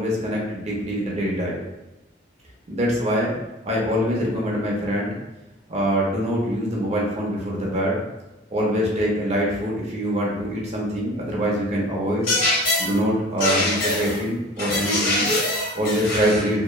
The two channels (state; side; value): normal; both; correlation 0.43